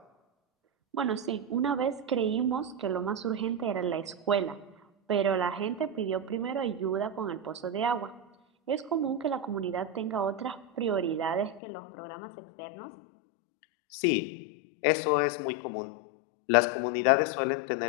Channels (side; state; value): right; drops out; at 11.6 s